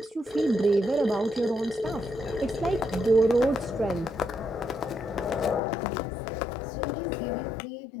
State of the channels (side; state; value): right; drops out; at 5.6 s